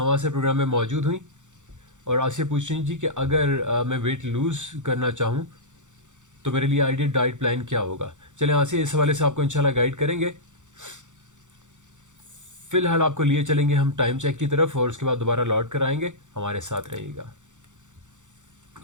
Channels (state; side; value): late; left; 0.85 ms